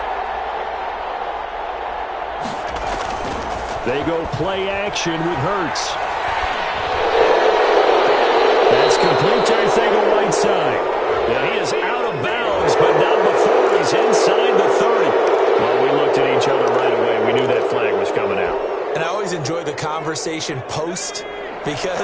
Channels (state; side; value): identical; both; correlation 1.00